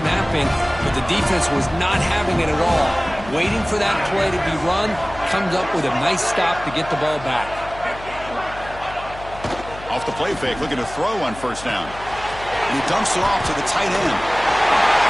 napping, but the defense was not having it at all. Waiting for that play to be run, comes up with a nice stop to get the ball back. Off the play fake, looking to throw on 1st down. And he dumps it off to the tight end.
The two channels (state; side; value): noise; left; hum, 15 dB below the sound